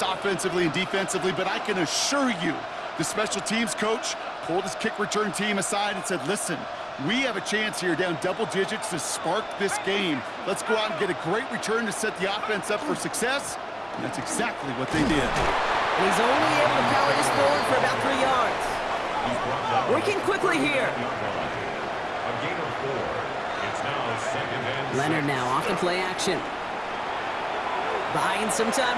offensively and defensively, but I can assure you the special teams coach pulled his kick return team aside and said, listen, we have a chance here down double digits to spark this game. Let's go out and get a great return to set the offense up for success. And that's exactly what they did. And he's only able to power this forward for about 3 yards. Working quickly here. A gain of 4. It's now second and Leonard now off the play action. Buying some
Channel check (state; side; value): identical; both; correlation 1.00